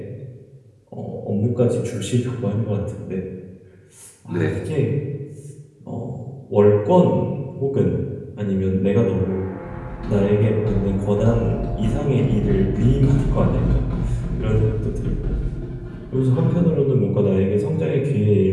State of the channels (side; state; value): both; identical; correlation 1.00